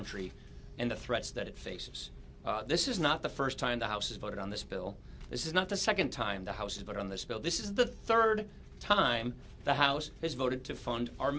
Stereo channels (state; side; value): identical; both; correlation 1.00